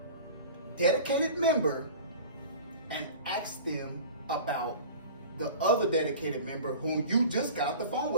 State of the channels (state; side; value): inverted; both; correlation -0.39